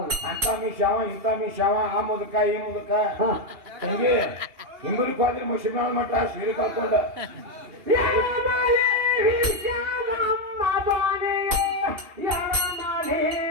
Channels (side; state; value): left; late; 2.8 ms